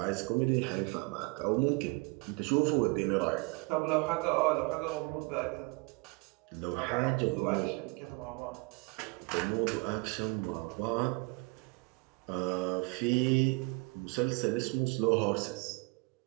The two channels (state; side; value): quieter; left; 29.2 dB